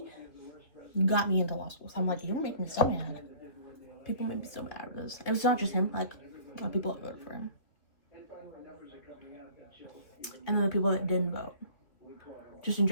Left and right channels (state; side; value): late; right; 3.0 ms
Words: got me into law school. So I'm like, you make me so mad. People make me so mad with this. It was not just him. Like, a lot of people that voted for him. And then the people that didn't vote. Just in